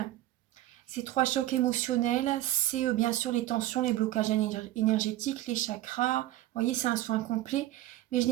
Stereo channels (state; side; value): quieter; left; 14.8 dB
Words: Ces 3 chocs émotionnels, c'est bien sûr les tensions, les blocages énergétiques, les chakras. Vous voyez, c'est un soin complet. Mais je